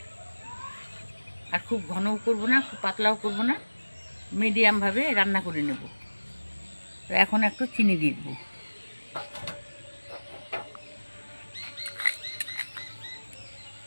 আর খুব ঘনও করব না, খুব পাতলাও করব না, মিডিয়ামভাবে রান্না করে নেব। তো এখন একটু চিনি দিয়ে দেব।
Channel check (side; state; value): both; inverted; correlation -1.00